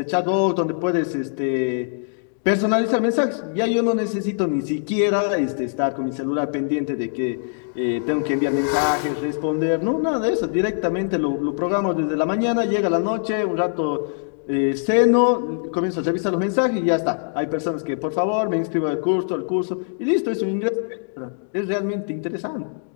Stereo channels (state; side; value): silent; right; digital silence